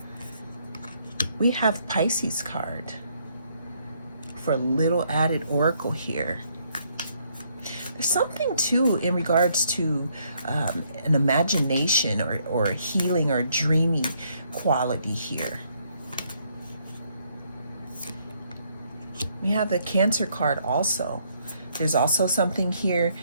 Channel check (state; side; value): inverted; both; correlation -0.70